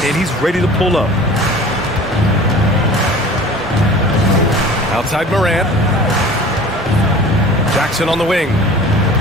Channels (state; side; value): normal; both; correlation 0.43